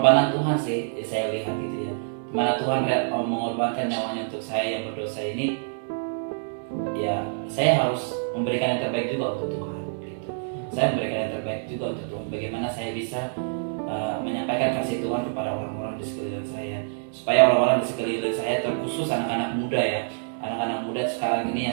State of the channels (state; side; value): silent; left; 61 dB below the other